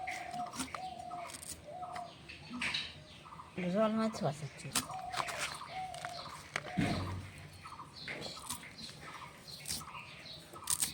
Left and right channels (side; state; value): both; identical; correlation 1.00